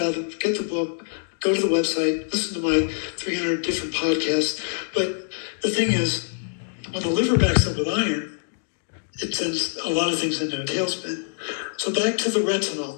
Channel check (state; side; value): silent; right; digital silence